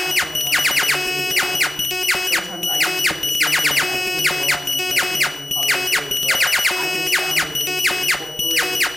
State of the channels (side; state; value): both; normal; correlation 0.97